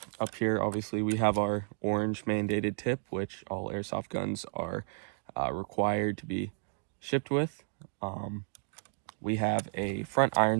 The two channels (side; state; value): left; silent; digital silence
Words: up here, obviously, we have our orange mandated tip, which all airsoft guns are required to be shipped with. We have a front iron